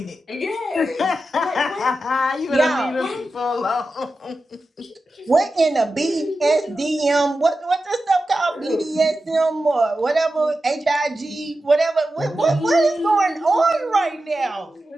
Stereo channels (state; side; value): normal; both; correlation 0.92